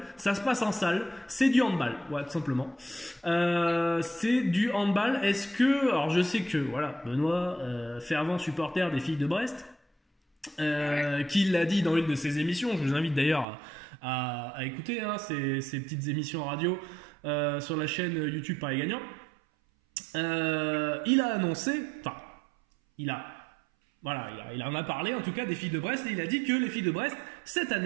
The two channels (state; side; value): drops out; left; at 13.5 s